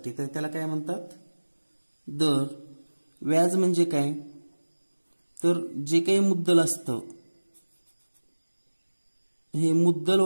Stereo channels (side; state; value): both; inverted; correlation -1.00